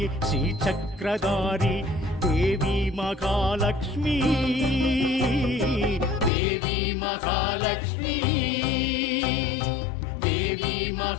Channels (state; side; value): drops out; right; at 6.3 s